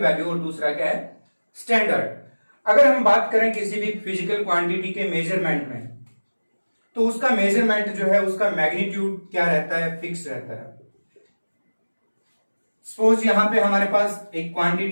वैल्यू और दूसरा क्या है? स्टैंडर्ड. अगर हम बात करें किसी भी फिजिकल क्वांटिटी के मेजरमेंट में तो उसका मेजरमेंट जो है उसका मैग्नीट्यूड क्या रहता है? फिक्स रहता है. सपोज यहां पे हमारे पास एक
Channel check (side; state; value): both; inverted; correlation -1.00